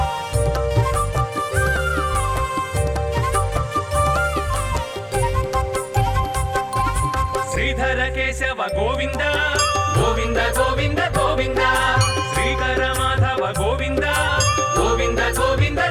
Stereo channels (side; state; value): both; identical; correlation 1.00